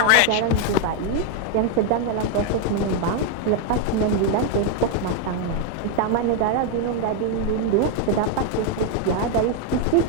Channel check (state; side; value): different; both; correlation 0.01